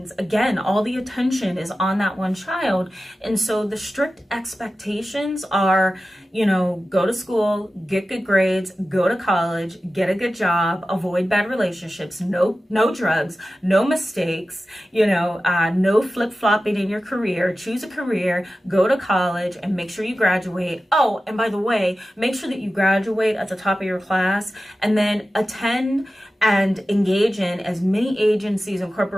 Again, all the attention is on that one child. And so the strict expectations are, go to school, get good grades, go to college, get a good job, avoid bad relationships, no drugs, no mistakes, no flip-flopping in your career, choose a career, go to college, and make sure you graduate. Oh, and by the way, make sure that you graduate at the top of your class, and then attend and engage in as many agencies and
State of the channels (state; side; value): normal; both; correlation 0.94